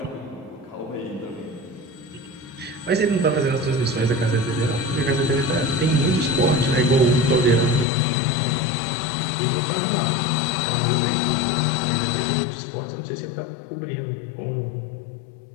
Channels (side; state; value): right; drops out; at 7.9 s